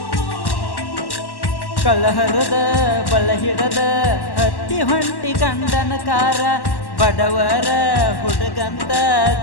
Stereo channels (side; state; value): right; late; 1.1 ms